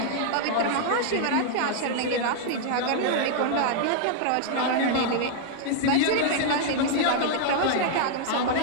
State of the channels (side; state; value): both; different; correlation -0.01